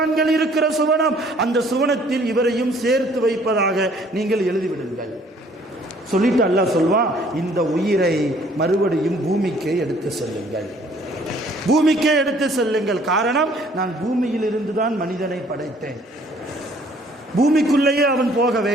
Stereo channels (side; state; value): both; normal; correlation 0.59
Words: இருக்கிற சுவனம், அந்த சுவனத்தில் இவரையும் சேர்த்து வைப்பதாக நீங்கள் எழுதிவிடுங்கள். சொல்லிட்டு அல்லாஹ் சொல்வான், இந்த உயிரை மறுபடியும் பூமிக்கே எடுத்து செல்லுங்கள், பூமிக்கே எடுத்து செல்லுங்கள். காரணம், நான் பூமியில் இருந்துதான் மனிதனை படைத்தேன், பூமிக்குள்ளேயே அவன் போக